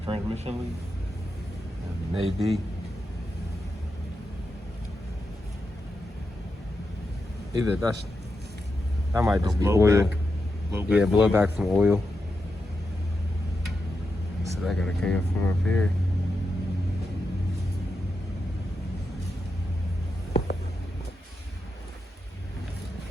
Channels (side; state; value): both; normal; correlation 0.87